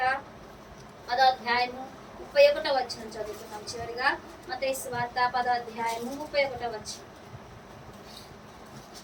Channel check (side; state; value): both; identical; correlation 1.00